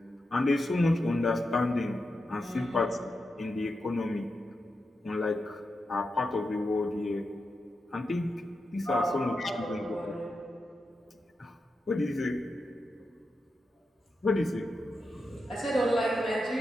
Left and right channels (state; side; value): normal; both; correlation 0.88